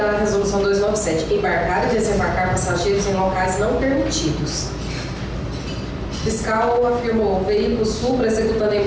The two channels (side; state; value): both; identical; correlation 1.00